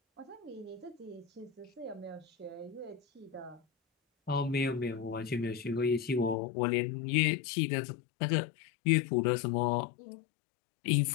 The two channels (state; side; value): drops out; right; at 6.4 s